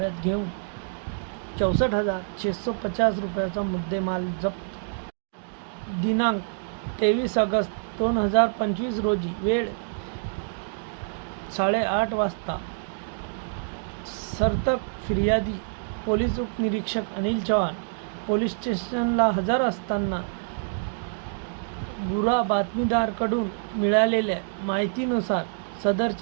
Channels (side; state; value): left; silent; digital silence